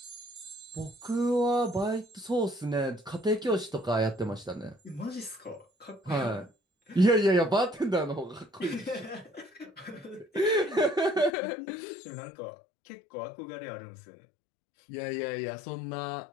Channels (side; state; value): right; drops out; at 11.3 s